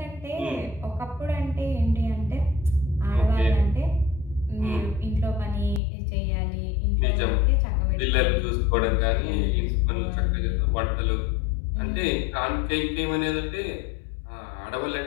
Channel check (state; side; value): drops out; right; at 5.8 s